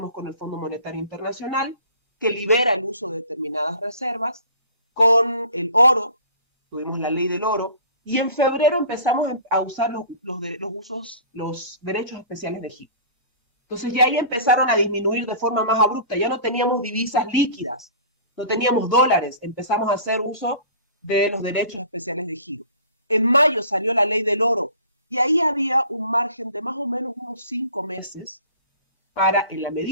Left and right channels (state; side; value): inverted; both; correlation -0.45